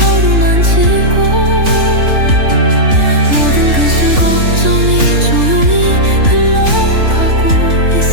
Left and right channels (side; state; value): left; late; 3.5 ms